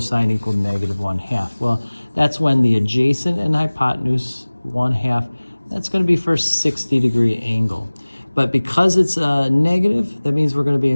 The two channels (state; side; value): inverted; both; correlation -1.00